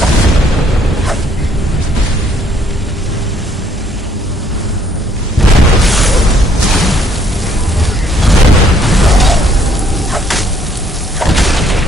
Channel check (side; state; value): both; normal; correlation 0.65